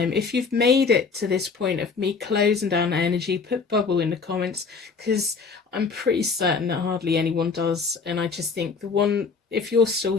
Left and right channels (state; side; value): quieter; right; 5.0 dB